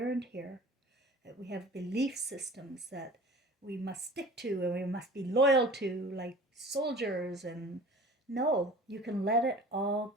here, that we have belief systems that we must stick to and we must be loyal to, like soldiers. And no, you can let it all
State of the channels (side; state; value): both; normal; correlation 0.44